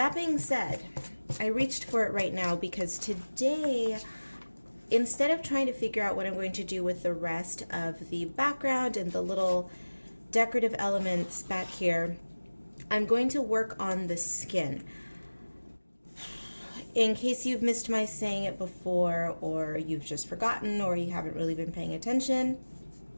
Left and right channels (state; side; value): inverted; both; correlation -1.00